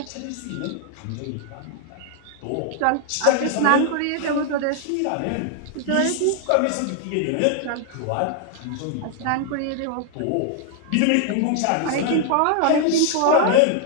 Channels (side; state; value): both; different; correlation 0.00